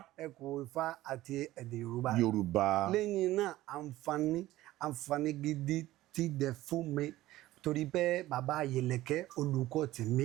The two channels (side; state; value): left; quieter; 16.1 dB